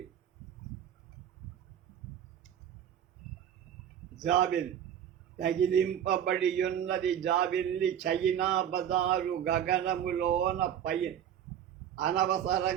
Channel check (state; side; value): quieter; left; 9.7 dB